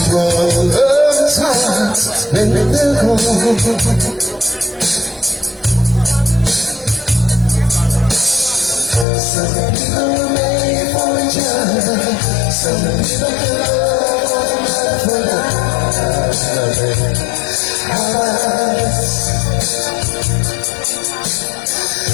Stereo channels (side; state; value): right; drops out; at 9.1 s